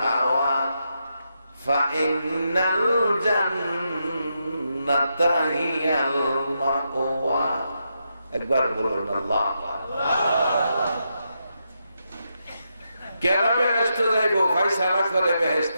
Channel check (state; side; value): inverted; both; correlation -0.83